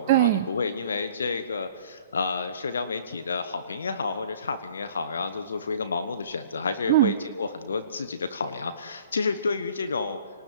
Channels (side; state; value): both; inverted; correlation -0.53